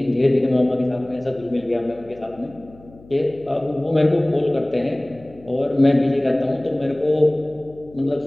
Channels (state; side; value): noise; left; hum, 23 dB below the sound